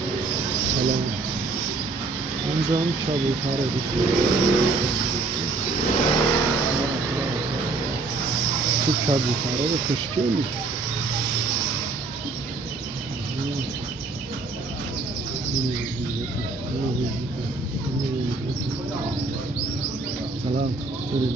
سلام. اینجا هم کبوتره تو کبوتره به خوشگلی. سلام.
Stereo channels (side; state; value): left; quieter; 3.7 dB